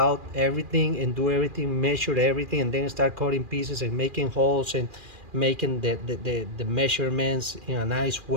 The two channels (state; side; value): late; left; 2.4 ms